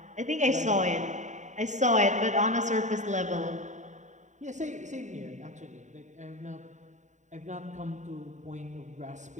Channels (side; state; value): left; late; 0.35 ms